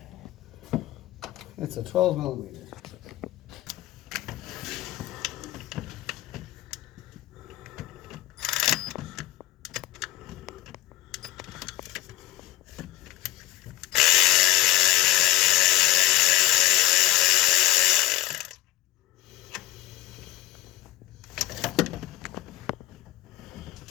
It's a 12 millimeter.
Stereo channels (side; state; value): right; quieter; 16.5 dB